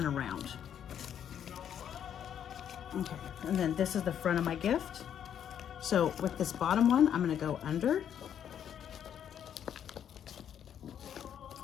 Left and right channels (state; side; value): quieter; right; 9.2 dB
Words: around. Okay, and then this is the front of my gift. So with this bottom one, I'm gonna go under.